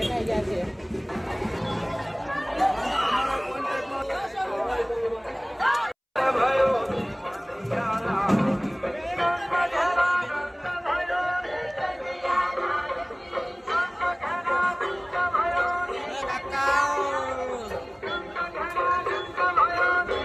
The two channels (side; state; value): both; identical; correlation 1.00